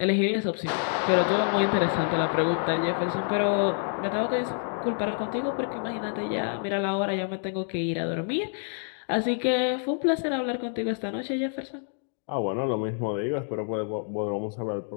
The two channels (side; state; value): right; silent; 58 dB below the other